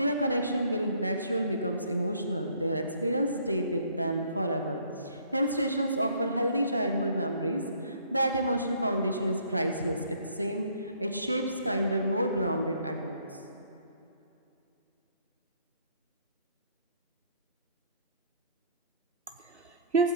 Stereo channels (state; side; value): inverted; both; correlation -0.61